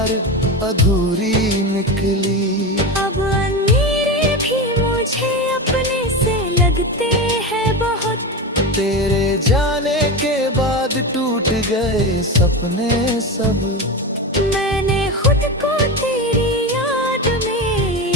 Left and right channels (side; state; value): both; normal; correlation 0.21